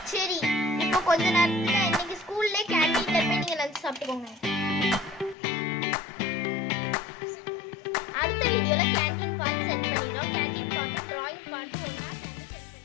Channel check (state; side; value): drops out; right; at 5.4 s